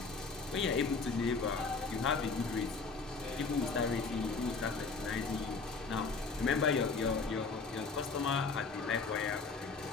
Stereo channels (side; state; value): right; quieter; 4.4 dB